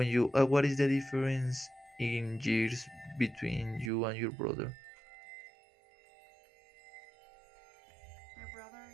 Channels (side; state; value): left; drops out; at 3.9 s